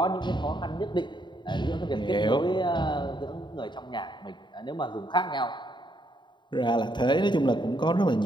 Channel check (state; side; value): late; right; 0.22 ms